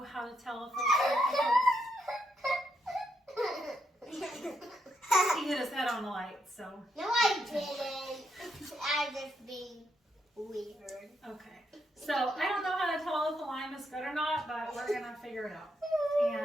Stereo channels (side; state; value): both; normal; correlation 0.80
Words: how to tell if he hit his head on the light. So No, I didn't. I'm just being weird. okay. So I don't know how to tell if the lime is good or not, but we're gonna figure it out.